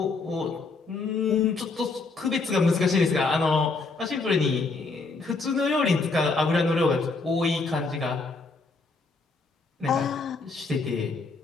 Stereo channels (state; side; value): quieter; right; 3.9 dB